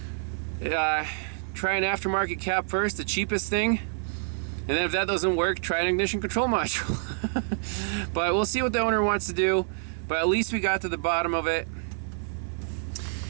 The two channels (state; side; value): silent; left; 60 dB below the other